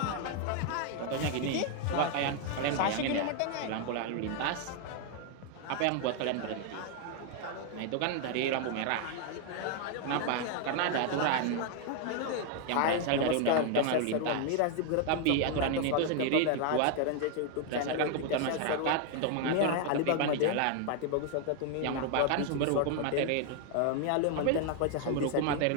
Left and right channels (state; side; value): different; both; correlation 0.00